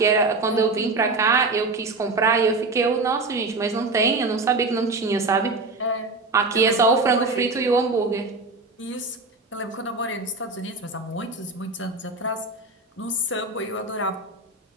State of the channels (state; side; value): quieter; left; 3.4 dB